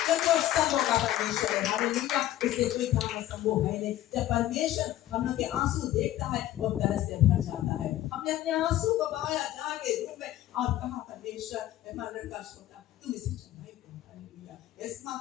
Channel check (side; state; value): right; quieter; 13.8 dB